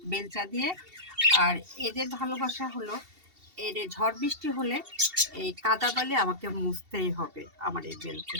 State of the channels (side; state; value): left; late; 2.7 ms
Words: বেলচা দিয়ে। আর এদের ভালোবাসা হলো, এর ঝড় বৃষ্টি হলে এই কাদা বালি আমাকে মুছতেই হবে আমার এই